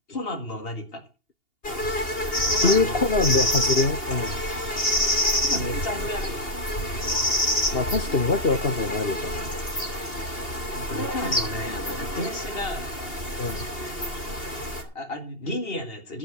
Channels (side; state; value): right; late; 2.8 ms